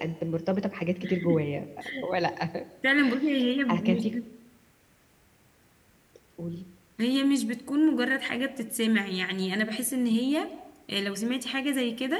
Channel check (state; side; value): identical; both; correlation 1.00